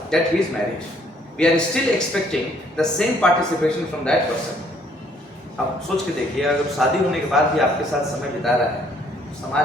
that he is married. We are still expecting the same participation from that person. अब सोच के देखिए, अगर शादी होने के बाद भी आपके साथ समय बिता रहा है, तो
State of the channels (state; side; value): normal; both; correlation 0.64